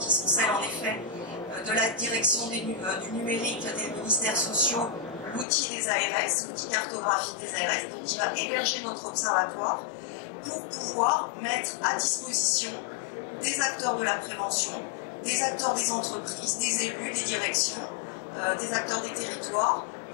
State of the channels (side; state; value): right; drops out; at 5.5 s